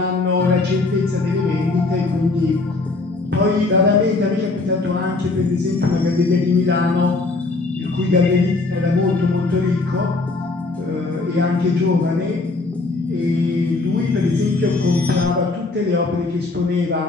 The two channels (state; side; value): quieter; right; 3.4 dB